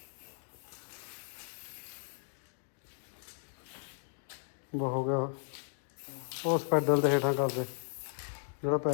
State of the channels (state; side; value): silent; right; digital silence